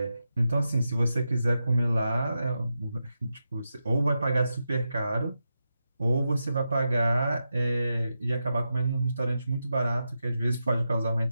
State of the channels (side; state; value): both; inverted; correlation -0.88